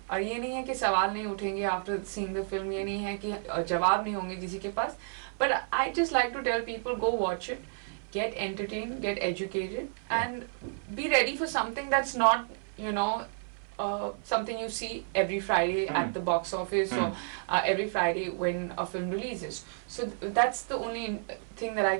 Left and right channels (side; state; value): left; silent; 57 dB below the other